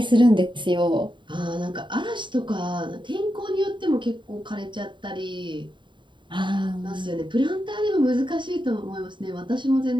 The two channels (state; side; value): late; left; 0.23 ms